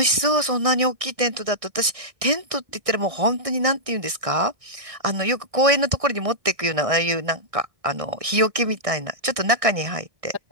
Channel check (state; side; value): late; left; 1.6 ms